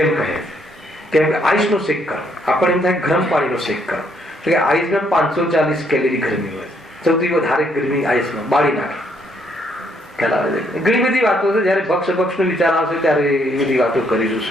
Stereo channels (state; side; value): normal; both; correlation 0.71